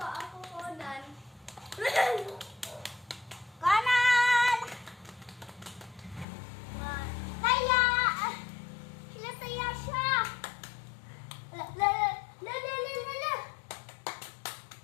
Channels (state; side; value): drops out; right; at 6.2 s